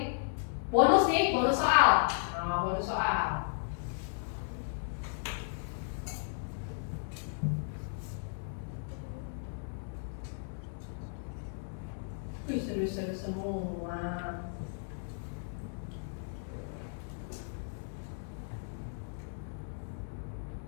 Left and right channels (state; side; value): silent; right; 54 dB below the other